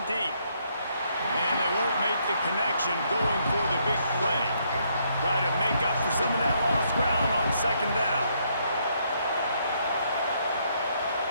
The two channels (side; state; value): both; inverted; correlation -0.72